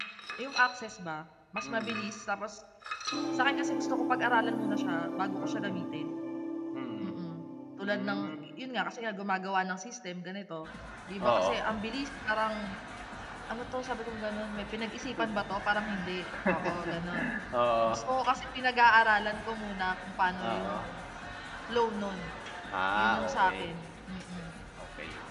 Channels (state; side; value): identical; both; correlation 1.00